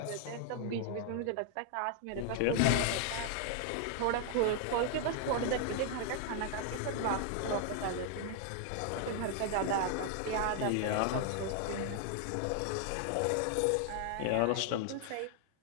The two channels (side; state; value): both; different; correlation 0.00